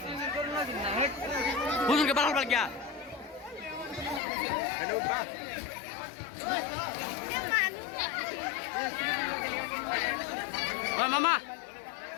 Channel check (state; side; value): drops out; right; at 4.2 s